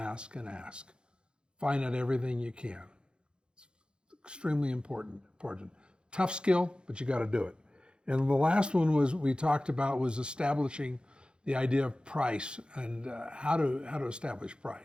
and ask. Find out everything you can. It's extremely important. Tough skill, but you got to do it. And the last one we talked about was establishing the idea of price and how to establish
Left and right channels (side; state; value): left; late; 0.052 ms